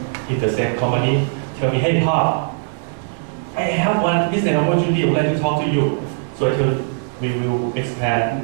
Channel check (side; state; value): left; silent; digital silence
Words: in the same company tell me, hey Pop, I have one business opportunity, I would like to talk to you. So I told we will